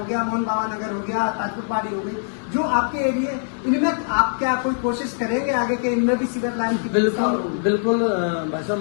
गया, मोहन बाबा नगर हो गया, ताजपुर पाड़ी हो गई, जो आपके एरिया, इनमें आप क्या कोई कोशिश करेंगे आगे के इनमें भी सीवर लाइन की? बिल्कुल बिल्कुल भाई साहब,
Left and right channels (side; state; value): right; silent; digital silence